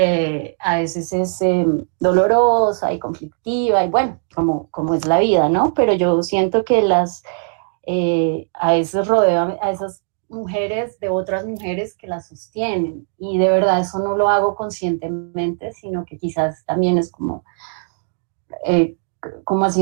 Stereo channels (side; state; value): left; silent; digital silence